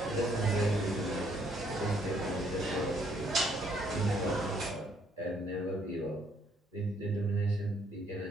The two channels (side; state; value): both; normal; correlation 0.68